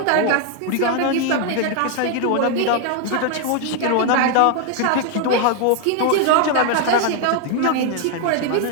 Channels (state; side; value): different; both; correlation 0.00